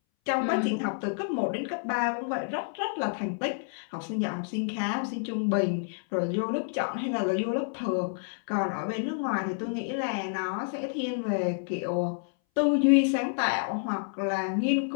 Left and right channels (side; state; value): right; silent; 59 dB below the other